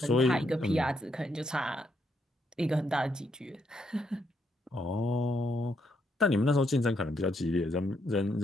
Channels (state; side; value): normal; both; correlation 0.77